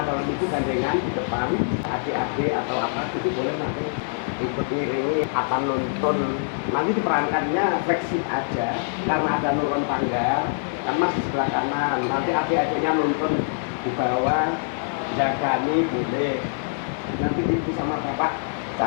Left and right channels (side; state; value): right; silent; digital silence